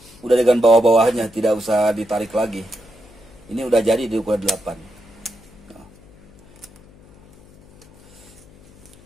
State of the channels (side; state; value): left; noise; hum, 25 dB below the sound